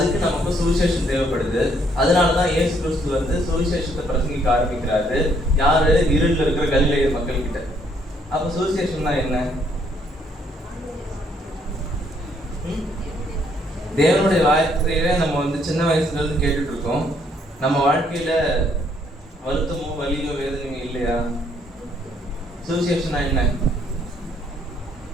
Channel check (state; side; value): normal; both; correlation 0.68